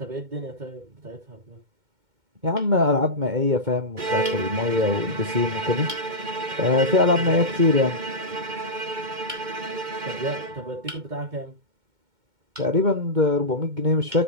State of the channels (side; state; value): left; late; 2.2 ms